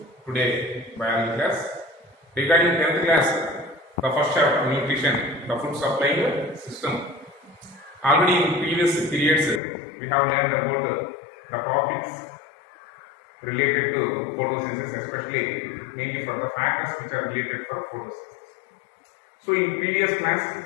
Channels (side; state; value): right; drops out; at 9.6 s